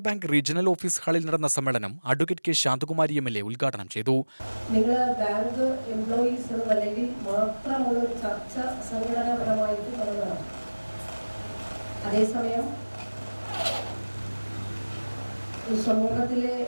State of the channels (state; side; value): inverted; both; correlation -1.00